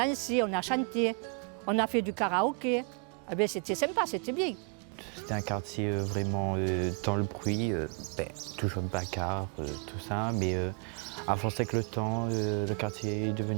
on a chanté, on a fait du karaoké. Eh bien, c'était sympa, c'était bien. C'était un quartier vraiment dans le bruit, toujours de bagarre, tout ça, mais à force avec le temps, le quartier est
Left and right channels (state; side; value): quieter; left; 37.5 dB